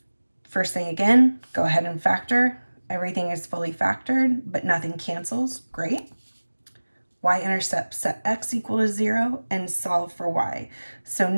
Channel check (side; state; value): both; inverted; correlation -1.00